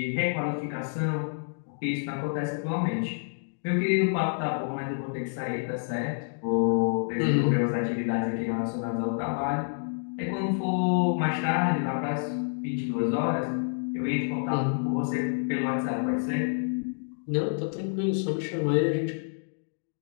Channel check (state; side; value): silent; right; digital silence